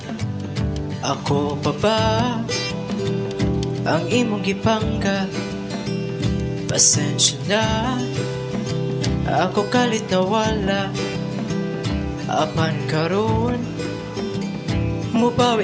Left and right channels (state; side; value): identical; both; correlation 1.00